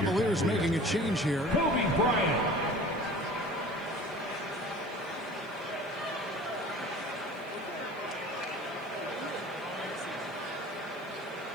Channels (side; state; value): right; noise; hiss, 28 dB below the sound